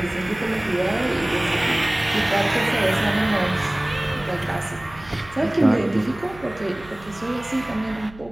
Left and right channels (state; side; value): noise; right; hum, 20 dB below the sound